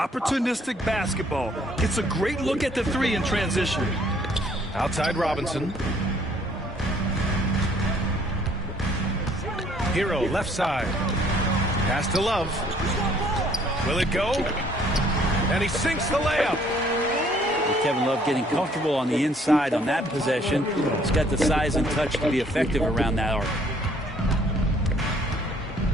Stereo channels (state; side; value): normal; both; correlation 0.61